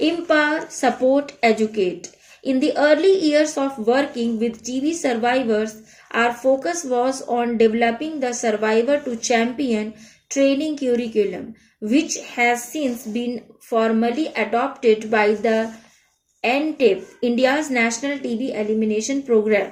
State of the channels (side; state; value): both; identical; correlation 1.00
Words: support, educate. In the early years of working with TB survivors, our focus was on developing the survivor to champion training curriculum, which has since been formally adopted by the NTEP, India's National TB Elimination Program.